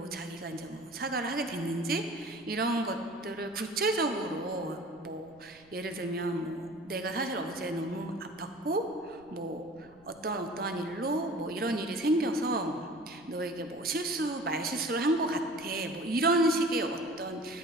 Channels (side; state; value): right; noise; rumble, 28 dB below the sound